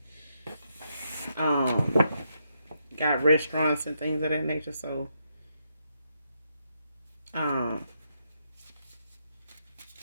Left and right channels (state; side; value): inverted; both; correlation -0.80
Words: Got restaurants and things of that nature, so yeah,